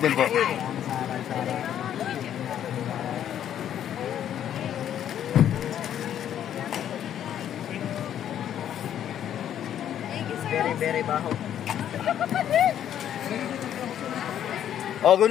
po. Very, very baho. Oh, okay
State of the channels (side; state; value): right; quieter; 10.3 dB